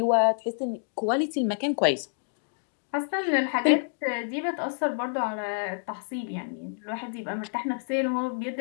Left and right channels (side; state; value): right; silent; digital silence